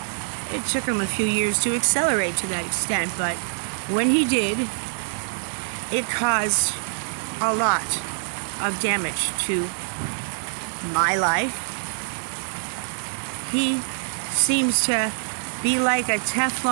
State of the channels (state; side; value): silent; left; digital silence